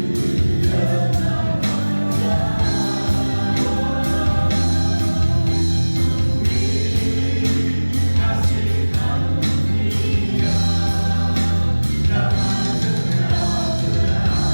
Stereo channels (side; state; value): both; inverted; correlation -1.00